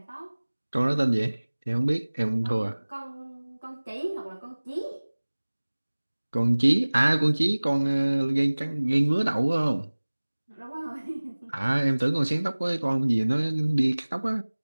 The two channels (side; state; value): both; inverted; correlation -1.00